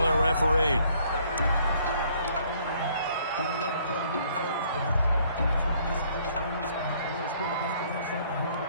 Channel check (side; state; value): both; inverted; correlation -0.63